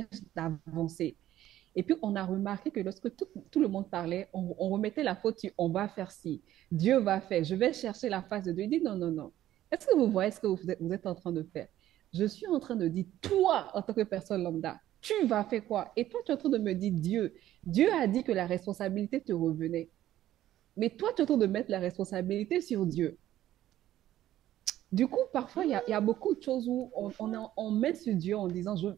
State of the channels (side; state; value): left; quieter; 13.2 dB